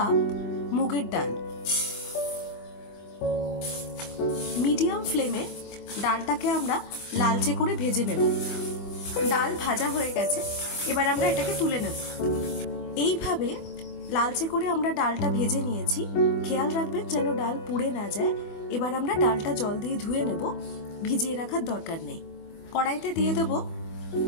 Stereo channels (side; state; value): right; late; 25 ms